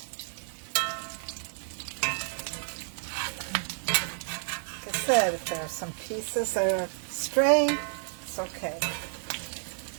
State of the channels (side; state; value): left; silent; digital silence